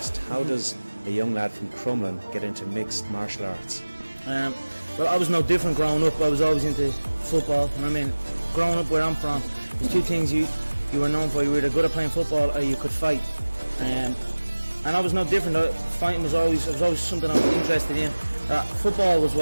how does a young lad from Crumlin get into mixed martial arts? Well, I was no different growing up. I was always into football, and I mean, growing up where I'm from, there's two things you were known for. You were either good at playing football or you could fight. And I was no different. Fighting was always something I was interested in. Football was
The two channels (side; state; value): both; inverted; correlation -1.00